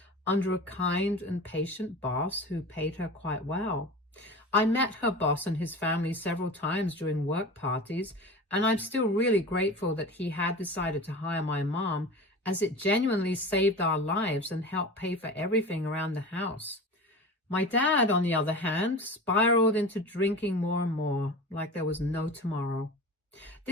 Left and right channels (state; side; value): normal; both; correlation 0.33